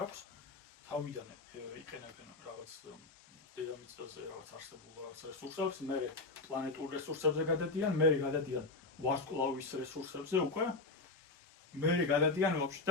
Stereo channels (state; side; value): quieter; right; 3.4 dB